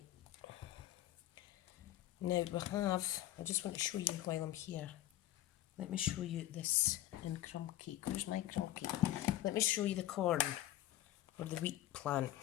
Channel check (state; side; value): quieter; right; 13.9 dB